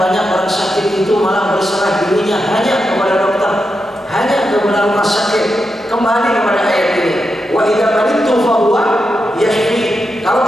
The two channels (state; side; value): normal; both; correlation 0.87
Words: orang sakit itu malah berserah dirinya hanya kepada dokter, hanya kepada rumah sakit. Kembali kepada ayat ini, wa idza maridtu fa huwa yashfi, kalau